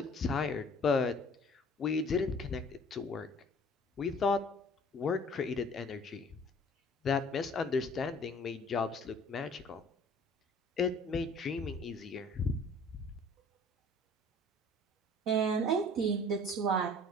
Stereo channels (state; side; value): normal; both; correlation 0.51